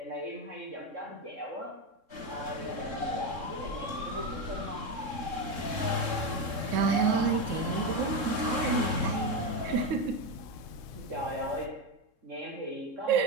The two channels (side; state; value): left; late; 3.7 ms